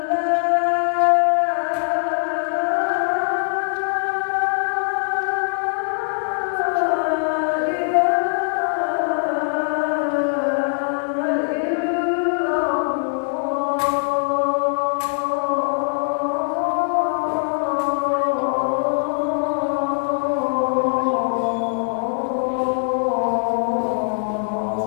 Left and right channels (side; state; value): right; silent; digital silence